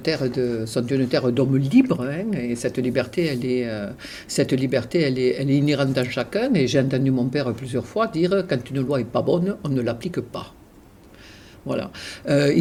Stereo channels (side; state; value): both; identical; correlation 1.00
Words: d'hommes libres. Et cette liberté, elle est inhérente en chacun. Et j'ai entendu mon père plusieurs fois dire, quand une loi n'est pas bonne, on ne l'applique pas. Voilà.